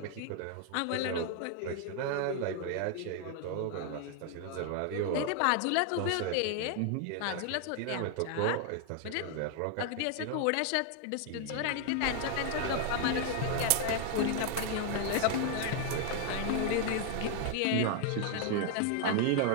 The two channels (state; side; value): different; both; correlation 0.00